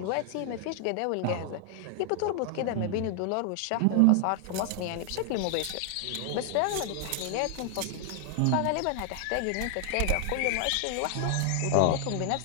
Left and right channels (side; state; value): both; different; correlation 0.00